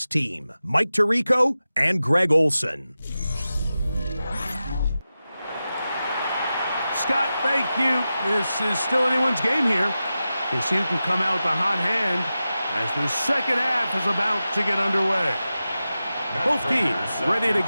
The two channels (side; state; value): both; inverted; correlation -0.93